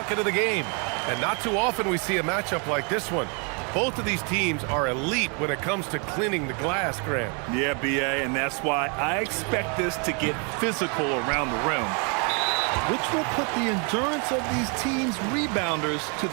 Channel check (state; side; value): quieter; left; 36.2 dB